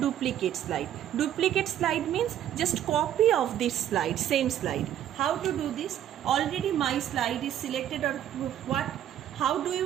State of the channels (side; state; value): left; quieter; 11.0 dB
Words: slide? Duplicate slide means just copy of this slide, same slide. How to do this? Already my slide is selected, or what? How do